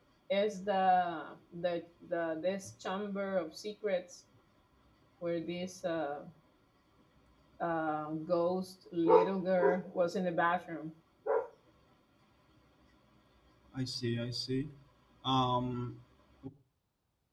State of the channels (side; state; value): both; identical; correlation 1.00